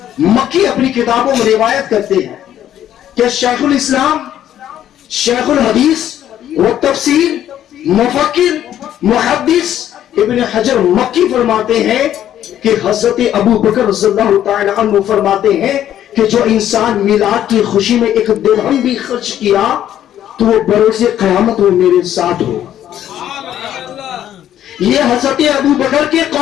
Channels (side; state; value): right; quieter; 11.2 dB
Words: مکی اپنی کتابوں میں روایت کرتے ہیں کہ شیخ الاسلام، شیخ الحدیث و تفسیر، مفکر، محدث ابن حجر مکی فرماتے ہیں کہ حضرت ابو بکر رضی اللہ تعالی عنہ فرماتے ہیں کہ جو انسان میلاد کی خوشی میں ایک درہم بھی خرچ کیا تو وہ بروز قیامت وہ میرے ساتھ ہو. یہ حضرت ابو بکر کے